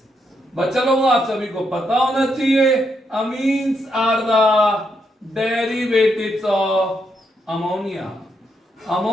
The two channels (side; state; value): both; normal; correlation 0.79